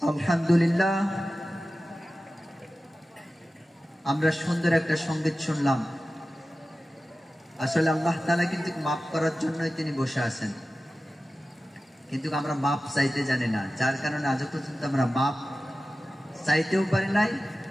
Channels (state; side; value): normal; both; correlation 0.95